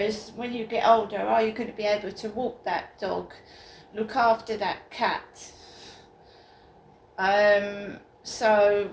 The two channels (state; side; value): identical; both; correlation 1.00